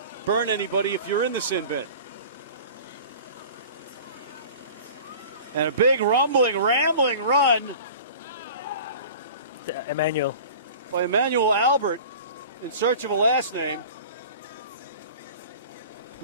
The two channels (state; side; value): inverted; both; correlation -0.40